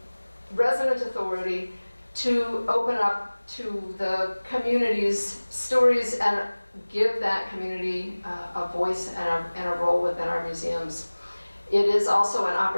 resident authority to open up to the community's stories and give that community a voice and a role within our museums. It is also an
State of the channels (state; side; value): inverted; both; correlation -1.00